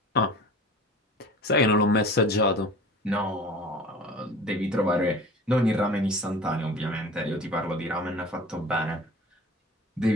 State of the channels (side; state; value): both; normal; correlation 0.41